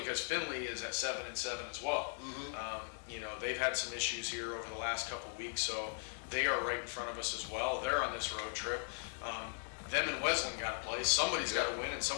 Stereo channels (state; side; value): silent; right; 52 dB below the other